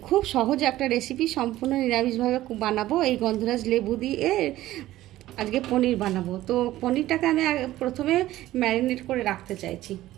খুব সহজ একটা রেসিপি, সম্পূর্ণ নিরামিষভাবে বানাবো। এই গন্ধরাজ লেবু দিয়ে আজকে পনির বানাবো। তো পনিরটাকে আমি প্রথমে ম্যারিনেট করে রাখতে চাইছি।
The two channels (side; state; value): left; quieter; 15.2 dB